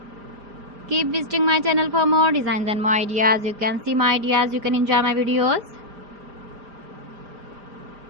Keep visiting my channel for more designs and more ideas. You can see my ideas. You can enjoy my videos.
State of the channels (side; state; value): left; late; 5.0 ms